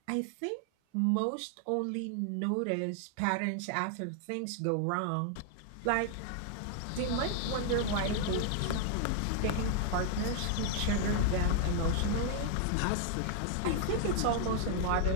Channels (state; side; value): different; both; correlation 0.00